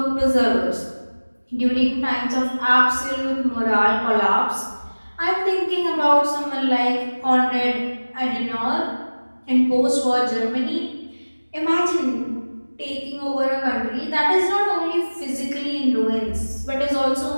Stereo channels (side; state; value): both; inverted; correlation -1.00